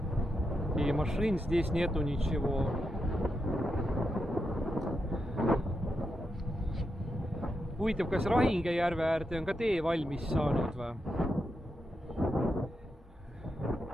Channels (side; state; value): both; normal; correlation 0.85